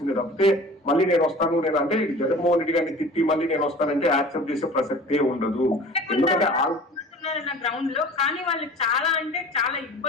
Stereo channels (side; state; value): both; normal; correlation 0.42